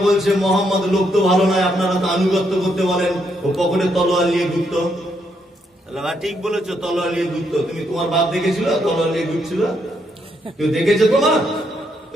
বলছে, মোহাম্মদ লোক তো ভালো নয়, আপনারা তো আনুগত্য করতে বলেন, ও পকেটে তলোয়ার নিয়ে ঘুরত। ঠিক বলেছো, তলোয়ার নিয়ে ঘুরত। তুমি তোমার বাপ দেখেছিল তলোয়ার নিয়ে ঘুরছিল? কেউ দেখেছে তোমার?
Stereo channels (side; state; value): both; normal; correlation 0.76